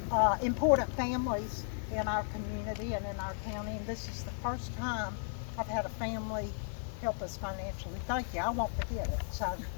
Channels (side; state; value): right; silent; 54 dB below the other